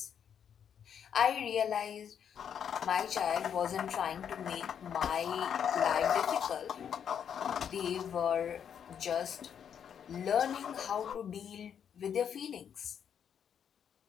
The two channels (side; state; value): right; quieter; 8.2 dB